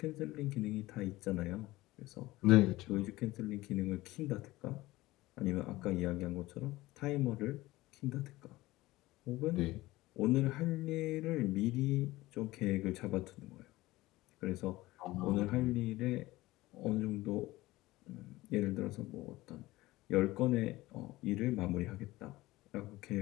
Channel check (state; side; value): quieter; right; 18.5 dB